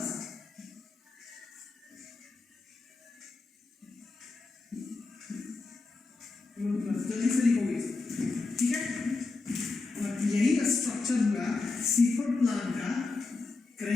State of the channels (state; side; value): quieter; right; 3.8 dB